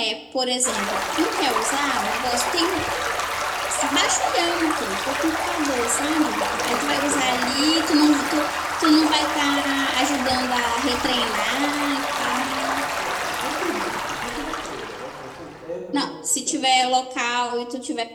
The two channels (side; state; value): both; identical; correlation 1.00